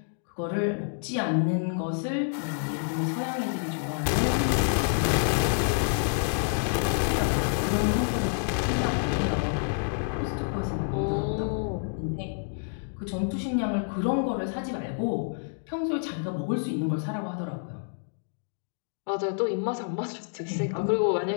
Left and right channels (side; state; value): right; silent; digital silence